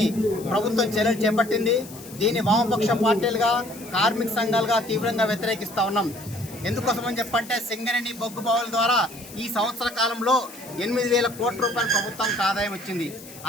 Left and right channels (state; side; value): noise; left; hiss, 17 dB below the sound